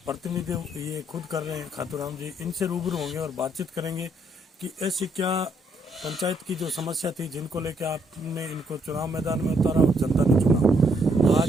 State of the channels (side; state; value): both; normal; correlation 0.72